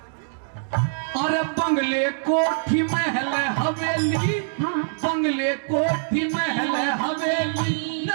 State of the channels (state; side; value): silent; left; digital silence